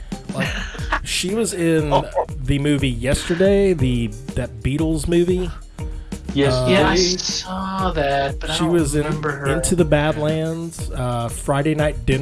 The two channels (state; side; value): identical; both; correlation 1.00